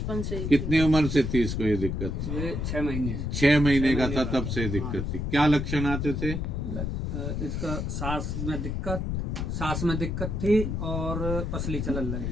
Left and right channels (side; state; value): left; noise; rumble, 2 dB below the sound